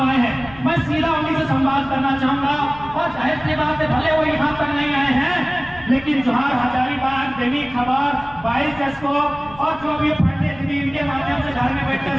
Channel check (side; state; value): left; noise; rumble, 21 dB below the sound